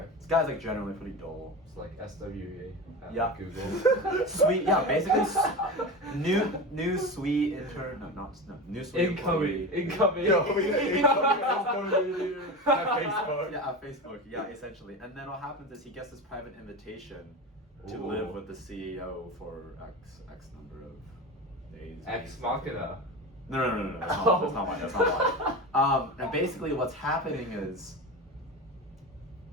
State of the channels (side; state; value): both; normal; correlation 0.26